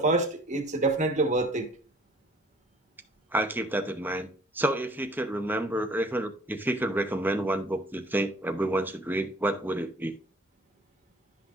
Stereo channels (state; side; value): normal; both; correlation 0.54